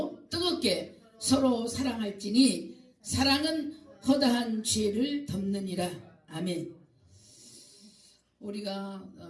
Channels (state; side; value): identical; both; correlation 1.00